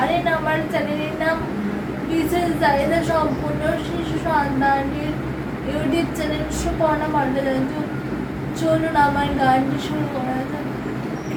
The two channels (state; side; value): identical; both; correlation 1.00